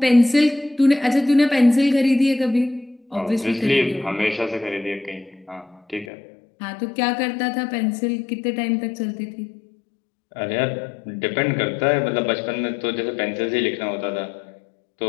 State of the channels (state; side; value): drops out; right; at 6.1 s